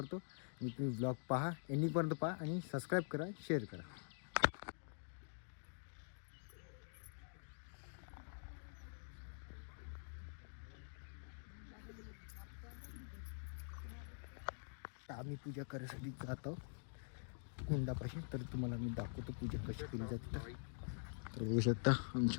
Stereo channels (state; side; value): silent; right; digital silence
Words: आणि तुम्ही व्लॉग पहा, एंडिंगपर्यंत पहा आणि सबस्क्राईब करा, शेअर करा. आम्ही पूजा करायसाठी जातो कुंडापाशी. तर तुम्हाला मी दाखवतो पूजा कशी केली जाते. तर बघू शकता